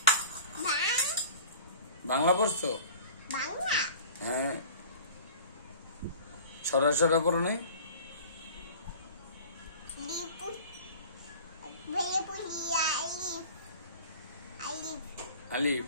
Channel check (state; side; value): inverted; both; correlation -0.42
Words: বাংলা পড়ছো? হ্যাঁ সরা সরা পড়ো নাই? আলিফ